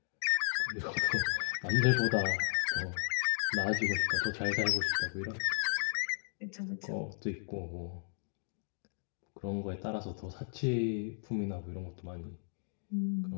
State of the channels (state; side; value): silent; right; digital silence